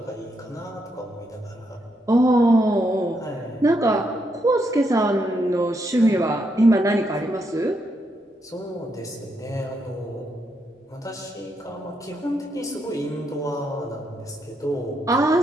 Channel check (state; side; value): normal; both; correlation 0.79